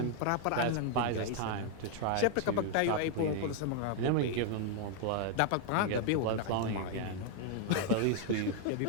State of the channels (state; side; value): different; both; correlation 0.00